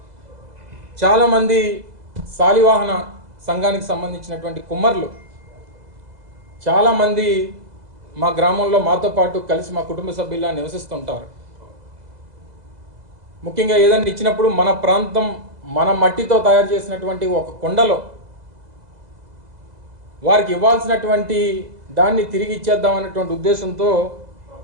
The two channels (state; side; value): late; left; 2.0 ms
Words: చాలామంది శాలివాహన సంఘానికి సంబంధించినటువంటి కుమ్మర్లు చాలామంది మా గ్రామంలో మాతో పాటు కలిసి మా కుటుంబ సభ్యులా నివసిస్తుంటారు. ముఖ్యంగా ఏదైనా ఇచ్చినప్పుడు మన ప్రాంతం మన మట్టితో తయారు చేసినటువంటి ఒక కుండలో వారికి ఇవ్వాల్సినటువంటి దాన్ని తిరిగి ఇచ్చేద్దామనేటువంటి ఉద్దేశంతో